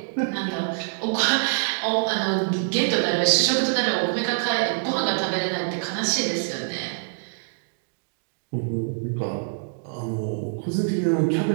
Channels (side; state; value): left; silent; digital silence